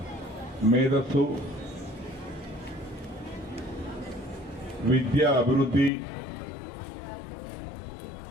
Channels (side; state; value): right; drops out; at 5.9 s